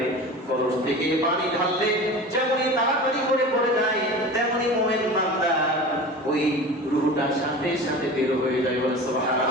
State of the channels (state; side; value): normal; both; correlation 0.34